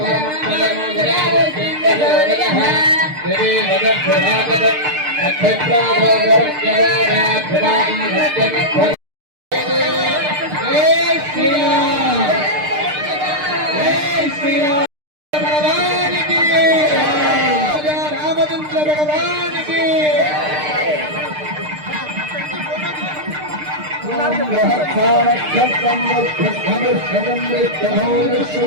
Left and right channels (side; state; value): left; late; 6.6 ms